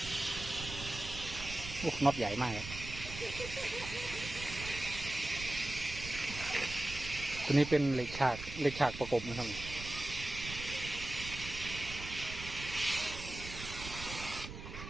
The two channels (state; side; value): noise; right; rumble, 10 dB below the sound